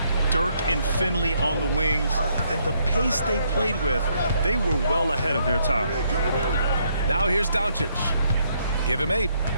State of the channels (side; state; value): both; inverted; correlation -0.72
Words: Dirk and Finley on the wings, and the pace they played with, they were well ahead of their time. Now here's Doncic. Give him 8.